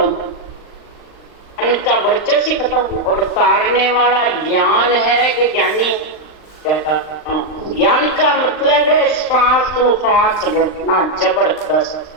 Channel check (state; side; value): late; right; 39 ms